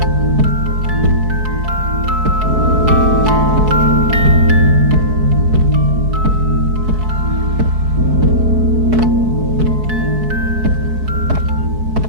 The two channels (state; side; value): late; left; 4.6 ms